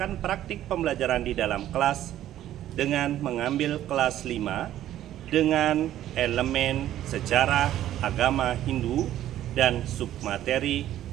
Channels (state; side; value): quieter; left; 12.6 dB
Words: praktik pembelajaran di dalam kelas dengan mengambil kelas 5 dengan elemen sejarah agama Hindu dan submateri